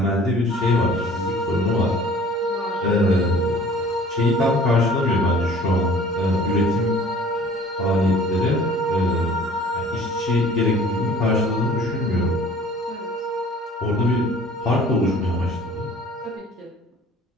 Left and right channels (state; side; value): normal; both; correlation 0.49